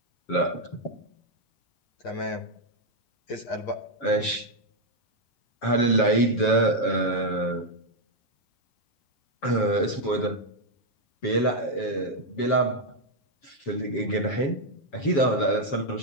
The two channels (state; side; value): late; right; 7.4 ms